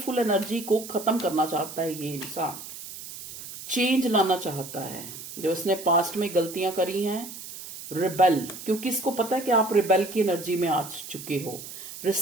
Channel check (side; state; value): right; noise; hiss, 12 dB below the sound